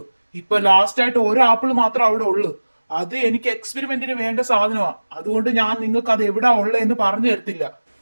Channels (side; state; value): both; inverted; correlation -1.00